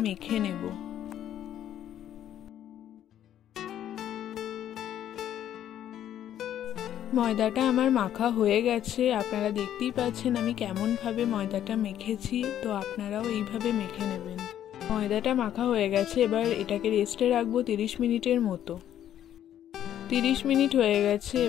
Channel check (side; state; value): right; quieter; 10.9 dB